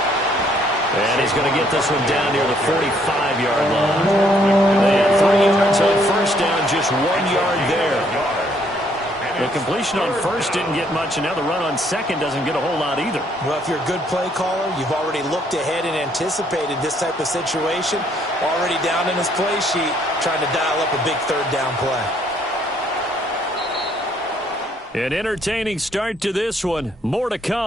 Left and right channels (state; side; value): normal; both; correlation 0.67